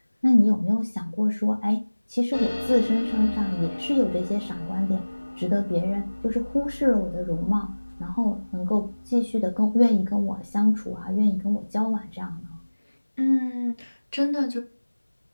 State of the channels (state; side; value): inverted; both; correlation -1.00